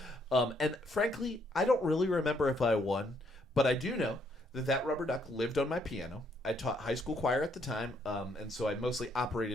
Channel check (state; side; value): normal; both; correlation 0.71